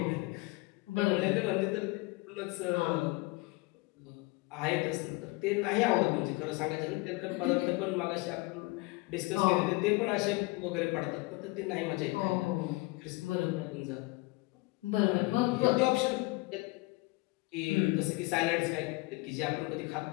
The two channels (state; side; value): quieter; right; 23.4 dB